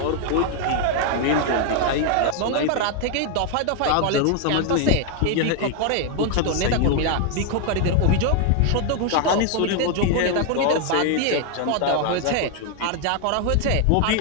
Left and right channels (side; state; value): both; different; correlation 0.00